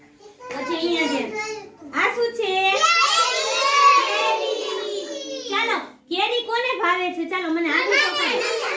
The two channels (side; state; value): both; identical; correlation 1.00